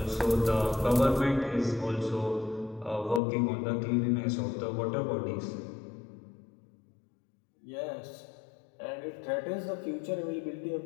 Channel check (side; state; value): right; drops out; at 3.2 s